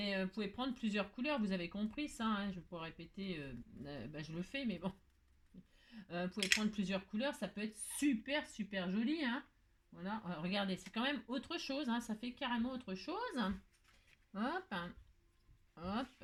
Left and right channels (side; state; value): both; identical; correlation 1.00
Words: vous pouvez prendre plusieurs couleurs, vous avez compris ça. Hein, je peux répéter, je le fais, mais bon. Vous pouvez prendre plusieurs couleurs, ça peut être super, super joli. Hein. Voilà, regardez, c'est quand même autre chose. Hein, ça fait carrément autre chose. Hop, hein. Hop,